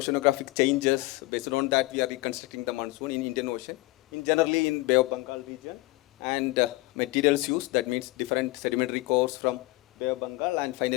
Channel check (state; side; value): quieter; right; 21.3 dB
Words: changes. Based on that, we are reconstructing the monsoon in Indian Ocean, generally in Bay of Bengal region, and materials used, that means different sedimentary cores from Bay of Bengal, and